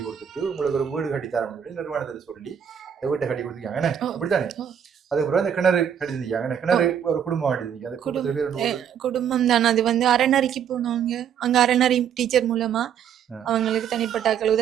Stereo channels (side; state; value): left; quieter; 8.6 dB